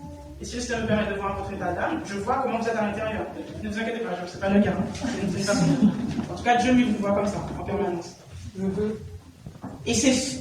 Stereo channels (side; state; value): both; identical; correlation 1.00